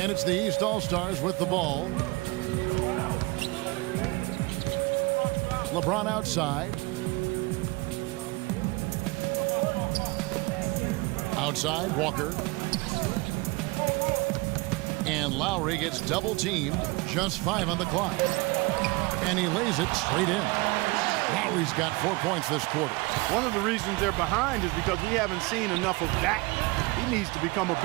it's the East All-Stars with the ball. LeBron outside. Outside, Walker. And Lowry gets double-teamed. Just 5 on the clock. And he lays it straight in. Lowry's got 4 points this quarter. One of the reasons they're behind is because we haven't seen enough of that. He needs to become a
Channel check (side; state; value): left; quieter; 24.7 dB